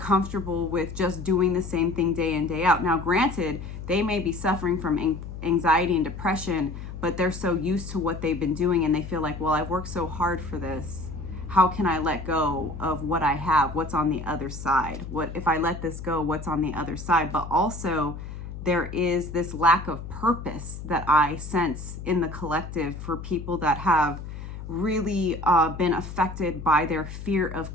with just doing the same thing day in, day out. Now, granted, they may be suffering from anxiety and depression, but they're so used to what they've been doing and they feel like, well, I've worked so hard for this. How can I let go of what I have? What's on the other side? What if I let this go? What's on the other side? But also, there is this lack of purpose that I sense in the collective for people that have really been affected by their fear of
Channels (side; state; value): left; noise; hum, 10 dB below the sound